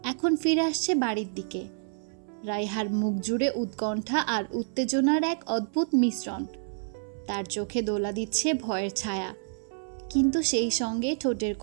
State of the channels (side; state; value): left; silent; 59 dB below the other